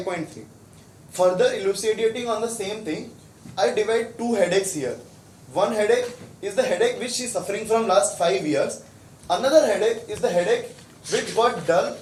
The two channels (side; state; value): both; identical; correlation 1.00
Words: Further elucidating on the same thing, I divide 2 headaches here. One headache is the headache which she is suffering from last 5 years. Another headache is the headache which got dull